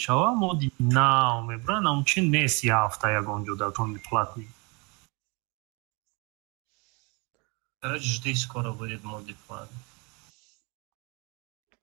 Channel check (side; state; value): left; quieter; 30.1 dB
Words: مودی ناو میبرن همچین نیست یه هفته یکون جدا تون платный. Короче, жди, скоро будет моди платный.